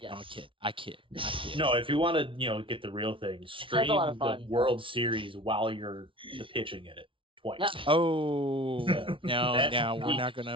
No, yes. I kid. No, if you want to, get the real thing, That's a stream lot of the fun. World Series while you're the pitching in it twice. Yeah. Oh no, That's we're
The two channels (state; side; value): late; left; 0.25 ms